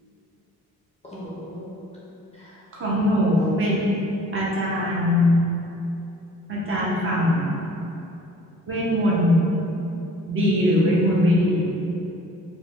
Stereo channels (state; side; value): normal; both; correlation 0.52